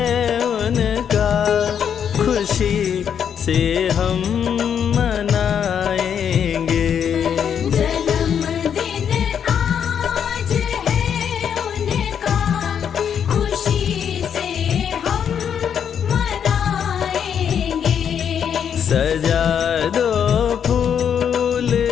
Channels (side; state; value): right; quieter; 8.1 dB